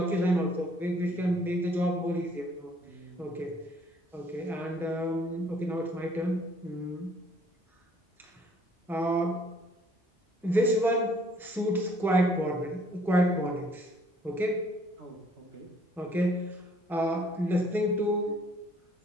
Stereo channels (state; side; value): normal; both; correlation 0.61